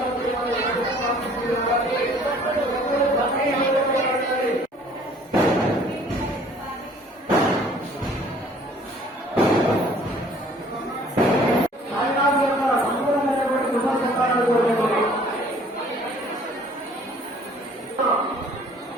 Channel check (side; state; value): both; normal; correlation 0.55